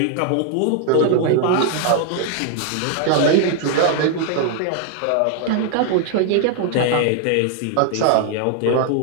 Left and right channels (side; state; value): both; different; correlation 0.00